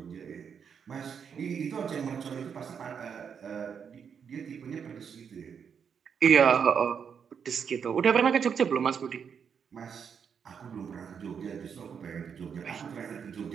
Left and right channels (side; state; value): left; quieter; 7.0 dB